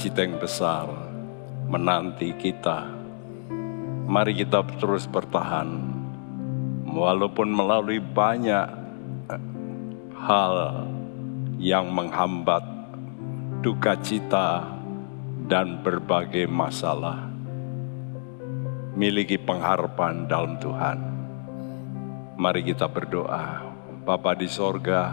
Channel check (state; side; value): silent; right; digital silence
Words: yang besar menanti kita. Mari kita terus bertahan, walaupun melalui banyak hal yang menghambat duka cita dan berbagai masalah. Miliki pengharapan dalam Tuhan. Mari kita berdoa. Bapa di